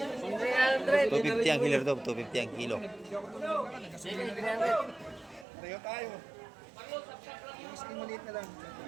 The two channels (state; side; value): drops out; left; at 5.5 s